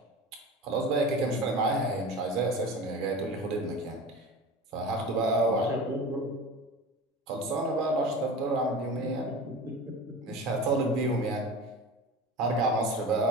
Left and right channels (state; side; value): normal; both; correlation 0.33